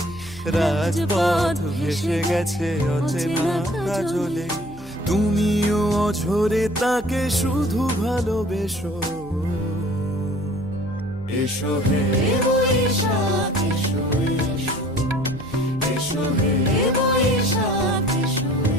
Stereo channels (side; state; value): right; noise; hum, 20 dB below the sound